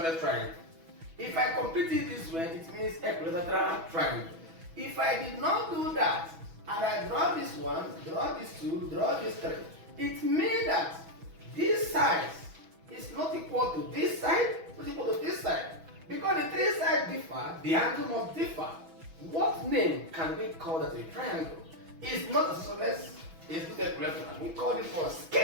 triangle. If I complete it this way, it means equilateral triangle. If I did not do that, and I draw this one, draw this two, draw this three, it means that this side is not equal to this side, not equal to this side. Because the three sides differ, the angle must differ. What name can we call that a triangle? It's not isosceles, it's not equilateral. We call it for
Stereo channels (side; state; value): left; late; 6.1 ms